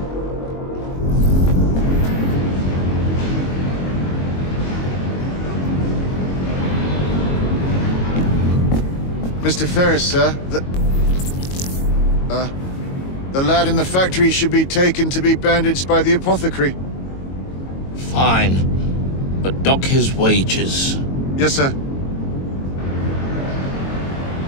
Mr. Ferris, sir, the lad in the factory should be taken to be bandaged by the apothecary. Fine. But dock his wages. Yes, sir.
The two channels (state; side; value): late; right; 22 ms